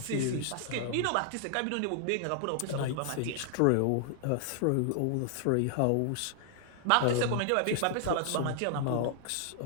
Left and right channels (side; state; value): both; different; correlation 0.00